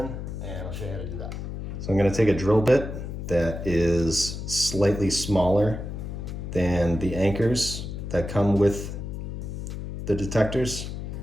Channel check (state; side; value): noise; left; hum, 6 dB below the sound